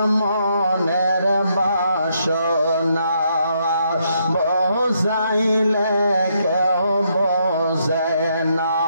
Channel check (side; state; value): both; inverted; correlation -0.75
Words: মনের বাসনা বোঝাইলে কেউ বোঝে না,